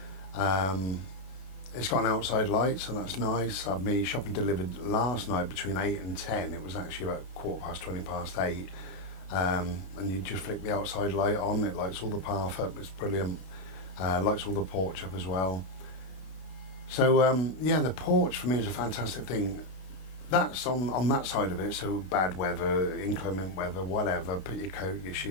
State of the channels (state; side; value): late; right; 32 ms